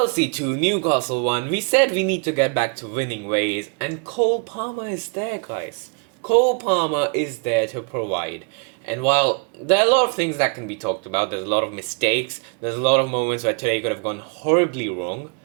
2, Newcastle 1, we said we need to get back to winning ways and Cole Palmer is there guys. Cole Palmer is there to provide. And while there are a lot of things that can be talked about, there's a lot of mistakes, there's a lot of moments where today could have gone horribly wrong.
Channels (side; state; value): left; quieter; 37.2 dB